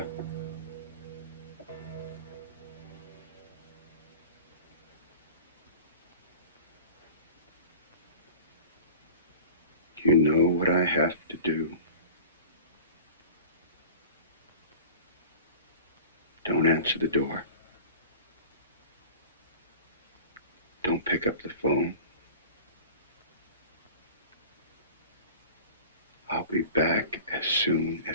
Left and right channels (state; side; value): inverted; both; correlation -0.41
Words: You know what I have to do. Don't answer the door. Don't pick up the phone. I'll be back as soon